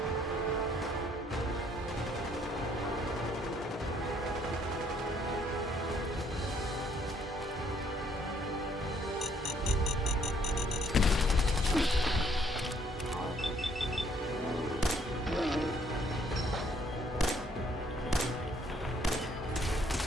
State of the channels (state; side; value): normal; both; correlation 0.66